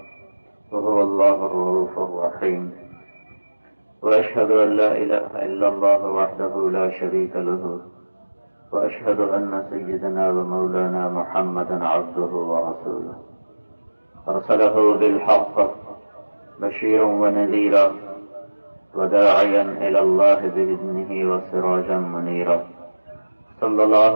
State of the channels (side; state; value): both; inverted; correlation -1.00